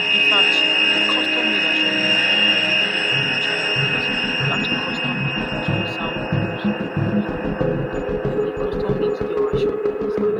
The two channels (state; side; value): identical; both; correlation 1.00